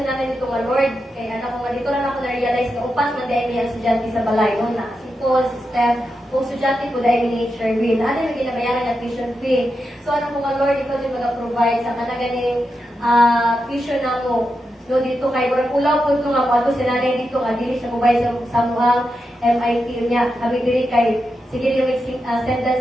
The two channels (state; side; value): normal; both; correlation 0.87